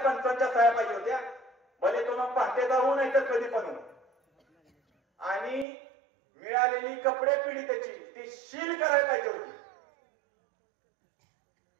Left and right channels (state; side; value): drops out; left; at 5.7 s